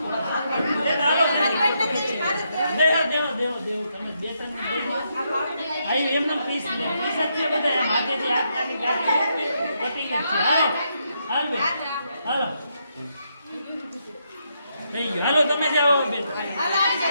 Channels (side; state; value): both; inverted; correlation -0.79